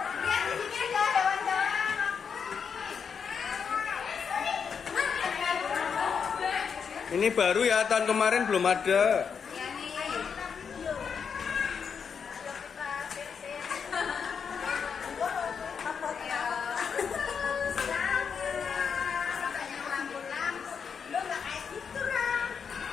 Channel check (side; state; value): right; quieter; 6.5 dB